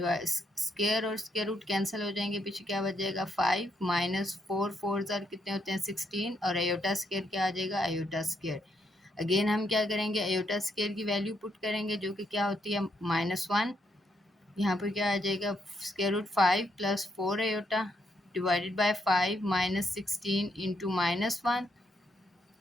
और स्क्वायर रूट कैंसिल हो जाएंगे, पीछे क्या बच जाएगा, 5 -4 4 कितने होते हैं, 16, और अयोटा स्क्वायर क्या आ जाएगा, अयोटा स्क्वायर। अगेन हम क्या करेंगे, आयोटा स्केयर की वैल्यू पुट करेंगे जो कि क्या होती है -1। यहाँ पर क्या आ जाएगा, square root 5 + 4 iota divided by 5 -16 into -1।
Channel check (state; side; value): normal; both; correlation 0.76